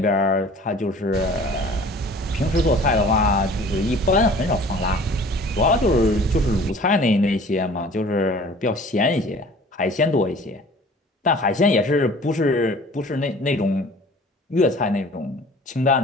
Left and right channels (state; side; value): normal; both; correlation 0.47